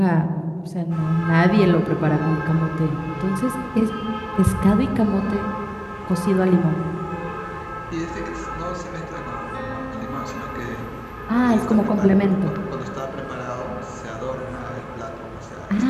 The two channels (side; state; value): both; identical; correlation 1.00